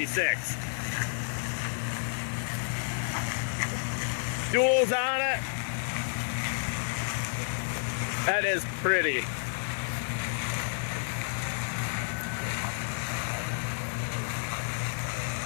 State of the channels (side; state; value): right; silent; digital silence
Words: Duals on it. That is pretty.